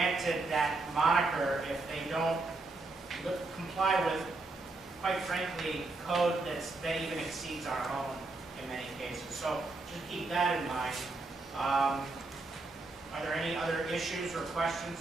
that moniker if they don't comply with, quite frankly, code that even exceeds our own in many cases. So just keep that in mind. Are there any other issues or questions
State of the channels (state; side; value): quieter; left; 3.3 dB